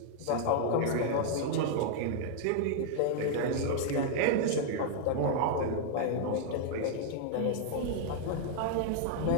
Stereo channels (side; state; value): both; different; correlation -0.01